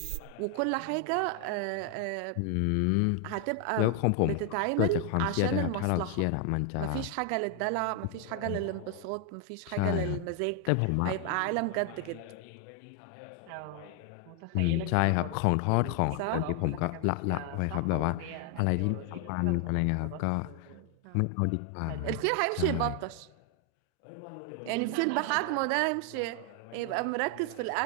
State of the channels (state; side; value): different; both; correlation 0.00